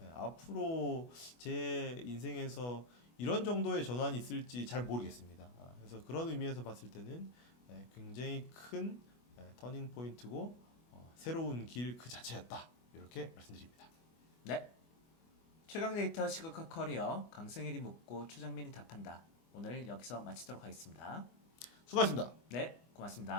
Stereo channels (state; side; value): late; right; 24 ms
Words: 앞으로 제 인생에서 이런 정도의 전환이 있을지 잘 모르겠습니다. 그래서 그런 의미에서 봤을 때는 굉장히 큰 터닝 포인트고 새로운 길 그 자체였다. 이렇게 말씀드립니다. 네. 최강 데이터 시각화 커리어 강승일이 묻고 최정민이 답한다. 오늘 여기서 마치도록 하겠습니다. 수고하셨습니다. 네,